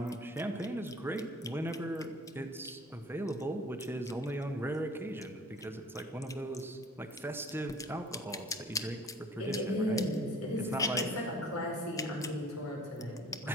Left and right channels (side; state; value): both; normal; correlation 0.49